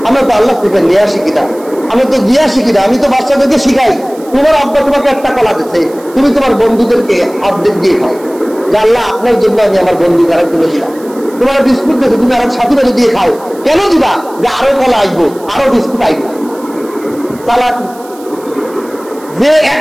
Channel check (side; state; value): right; noise; hiss, 23 dB below the sound